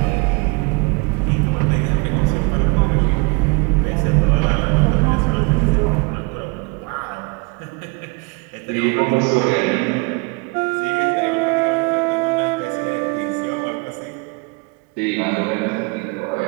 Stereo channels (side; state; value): left; quieter; 29.7 dB